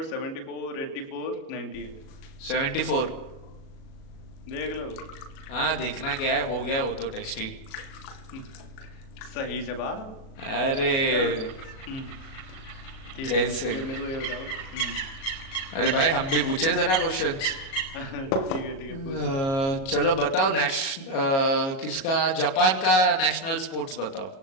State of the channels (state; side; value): late; right; 37 ms